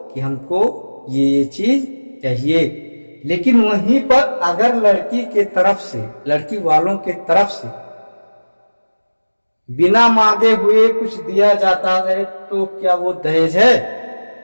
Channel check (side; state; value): both; inverted; correlation -1.00